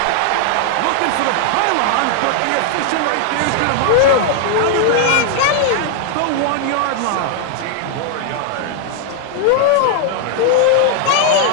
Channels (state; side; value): different; both; correlation 0.00